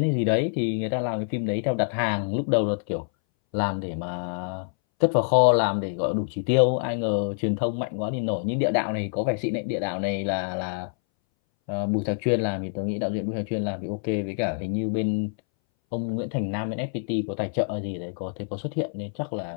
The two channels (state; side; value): silent; right; 60 dB below the other